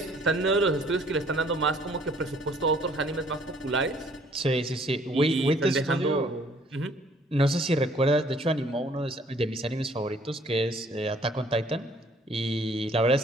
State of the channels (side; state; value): both; normal; correlation 0.59